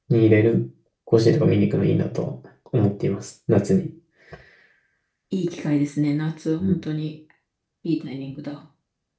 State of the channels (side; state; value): both; identical; correlation 1.00